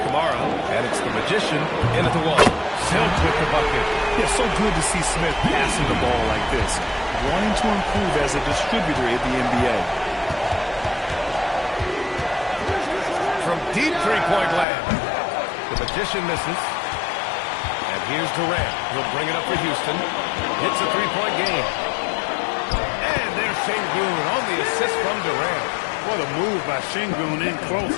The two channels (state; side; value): drops out; right; at 14.7 s